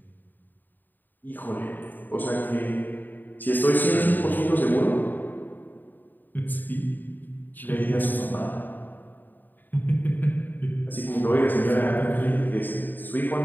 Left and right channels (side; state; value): right; late; 0.089 ms